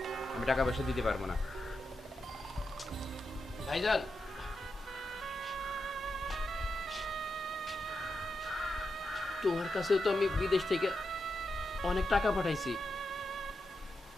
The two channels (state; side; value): normal; both; correlation 0.87